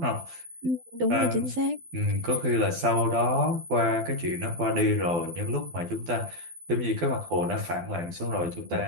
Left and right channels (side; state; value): left; late; 12 ms